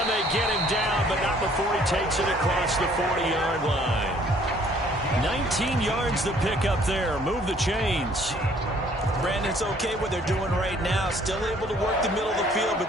they get him down, but not before he takes it across the 40-yard line. 19 yards to pick up there. Move the chains. Brandon, it's okay what they're doing right now. Still able to work the middle of the field,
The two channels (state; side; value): normal; both; correlation 0.59